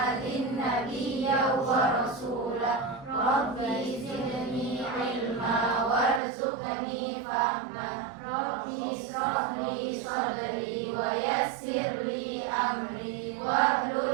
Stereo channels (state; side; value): drops out; left; at 6.2 s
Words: nabiyya wa rasula. Rabbi zidni ilma warzuqni fahma. Rabbi ishrah li sadri wa yassir li amri wahlul